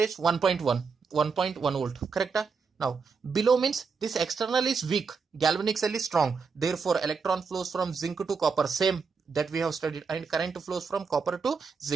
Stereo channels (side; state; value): left; quieter; 5.2 dB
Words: 1.1 volt, correct? Now below means this external is weak, galvanic cell is strong, therefore electron flows from zinc to copper, same that we have studied, and current flows from copper to